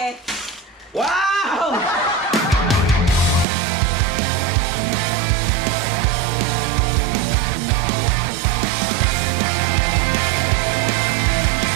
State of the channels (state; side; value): drops out; left; at 3.5 s